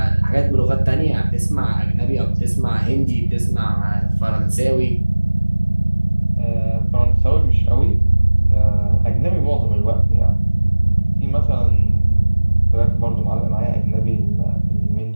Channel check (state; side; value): inverted; both; correlation -1.00